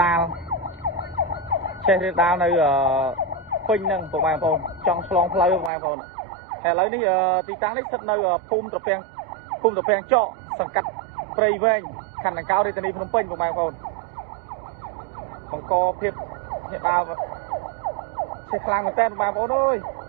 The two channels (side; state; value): left; drops out; at 5.7 s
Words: ដាលនៅពេញហ្នឹងបងប្អូនចង់ឆ្លងផ្លូវបងប្អូនឥឡូវនេះទីតាំងនេះស្ថិតនៅភូមិត្រពាំងចកសង្កាត់ព្រៃវែងខណ្ឌដង្កោរាជធានីភ្នំពេញបងប្អូនបង្កភាពញាក់ដាលឆេះខ្លាំងមែនតើបងប្អូនអើយ